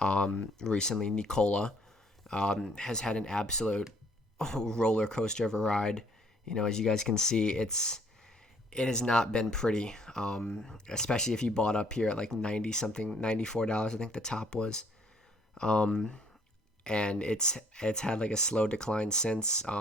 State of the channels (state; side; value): normal; both; correlation 0.63